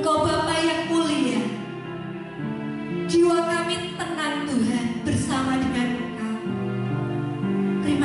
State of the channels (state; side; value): identical; both; correlation 1.00